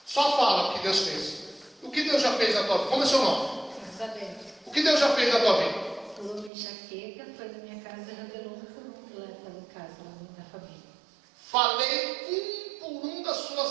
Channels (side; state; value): left; drops out; at 6.5 s